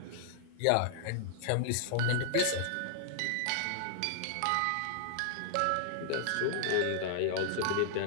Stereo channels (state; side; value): different; both; correlation -0.01